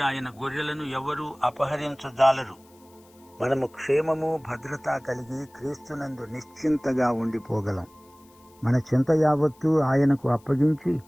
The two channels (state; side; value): noise; left; hiss, 30 dB below the sound